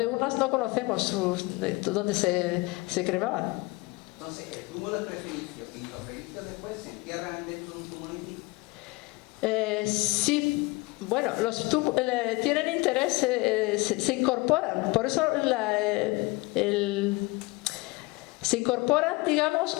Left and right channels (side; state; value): right; quieter; 24.1 dB